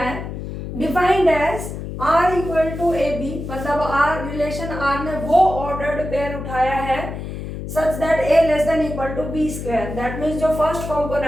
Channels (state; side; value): noise; left; hum, 7 dB below the sound